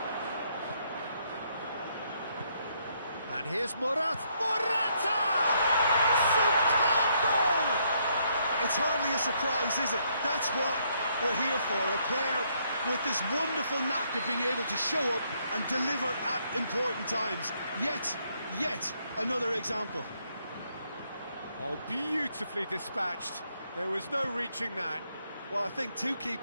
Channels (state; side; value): inverted; both; correlation -0.72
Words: And here's Morata! Superb goal! It's hardly a surprise, is it? That's what we're here for, a player with this wonderful knack of being able to show up and deliver at important times. Yet another example. Oh, beautifully dispatched. There was no reaching that. Well, I think two